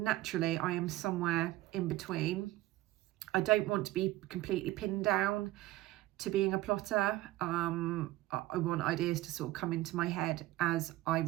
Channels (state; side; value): quieter; left; 16.8 dB